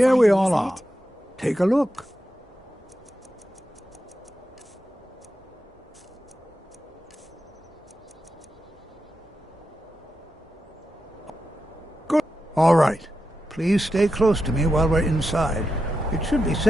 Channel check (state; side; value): normal; both; correlation 0.88